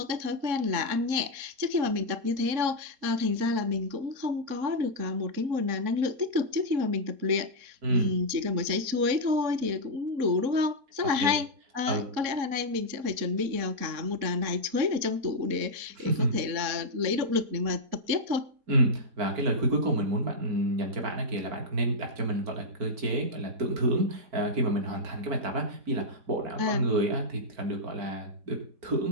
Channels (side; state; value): left; late; 3.7 ms